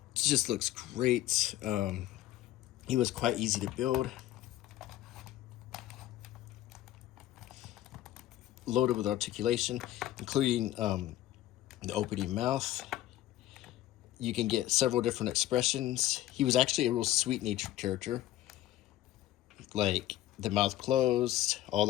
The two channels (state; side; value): quieter; right; 14.4 dB